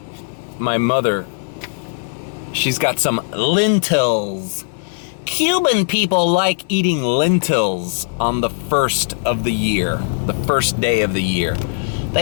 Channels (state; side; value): silent; right; digital silence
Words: mother. She's got some lentils. Cuban people like eating lentils on the first of the year, the first day of the year.